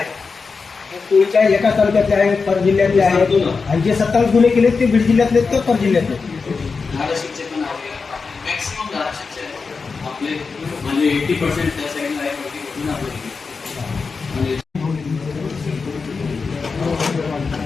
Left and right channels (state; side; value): quieter; right; 4.8 dB